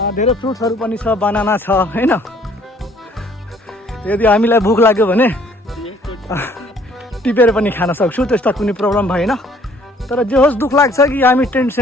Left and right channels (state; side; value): normal; both; correlation 0.59